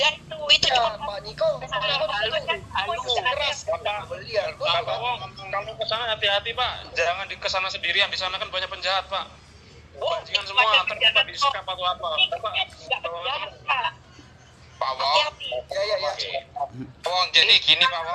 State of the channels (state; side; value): identical; both; correlation 1.00